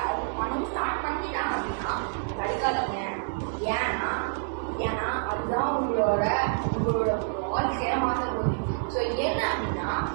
அவங்க பண்ணணும் ஸ்டார்ட் பண்ணிட்டாங்க அப்படின்னா படிக்காதீங்க. ஏன்னா அதுதான் உங்களோட வாழ்க்கையை மாற்ற போகுது. ஸோ என்ன அப்படின்னா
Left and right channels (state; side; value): silent; left; 59 dB below the other